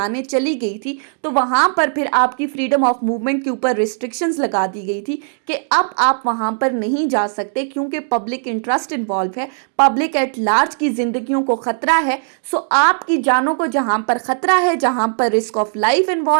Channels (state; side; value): silent; left; 67 dB below the other